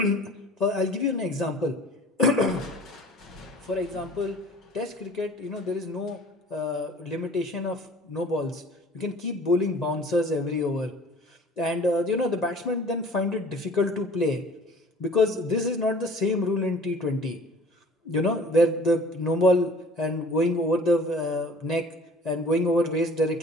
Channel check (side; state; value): both; normal; correlation 0.48